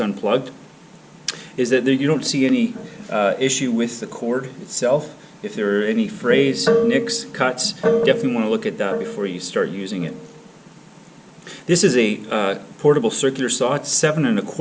is that you don't see any issue with the cord itself. If there are any frays, nicks, cuts, definitely want to look at that before you start using it. This is a portable circular saw. It's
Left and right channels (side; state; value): both; identical; correlation 1.00